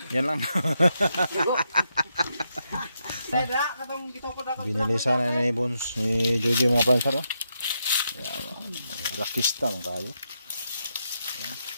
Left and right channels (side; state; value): both; inverted; correlation -0.82